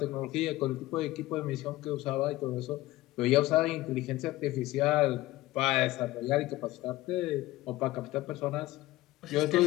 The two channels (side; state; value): right; quieter; 17.5 dB